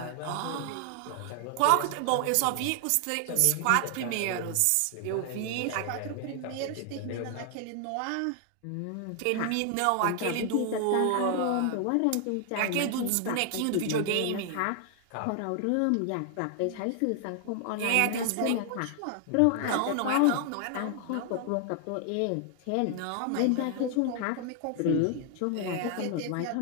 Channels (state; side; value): different; both; correlation 0.00